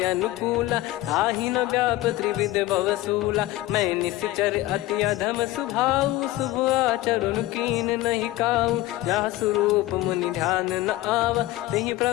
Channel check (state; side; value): quieter; right; 16.7 dB